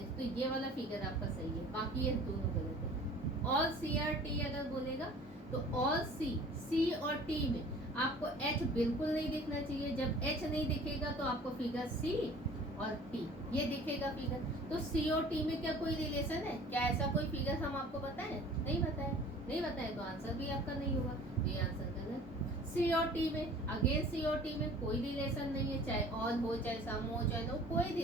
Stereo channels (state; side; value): normal; both; correlation 0.47